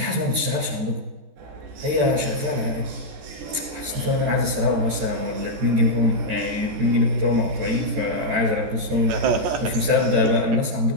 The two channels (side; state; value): left; late; 14 ms